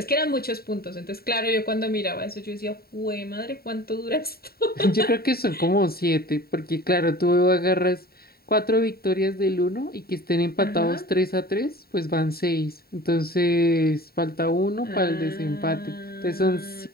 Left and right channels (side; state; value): right; late; 0.45 ms